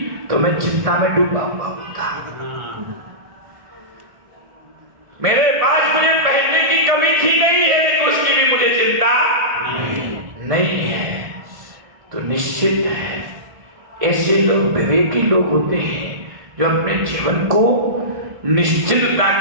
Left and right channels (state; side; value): late; left; 1.7 ms